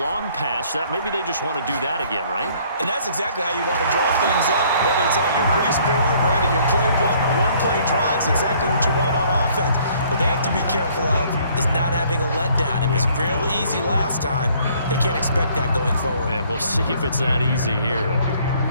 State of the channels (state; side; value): inverted; both; correlation -0.60